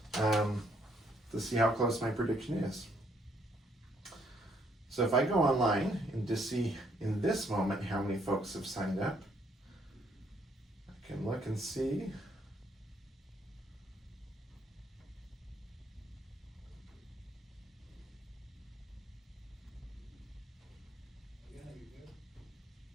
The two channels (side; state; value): both; normal; correlation 0.69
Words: to see how close my prediction is. So if I go online and just see in this moment how many folks have signed up, I can look and see.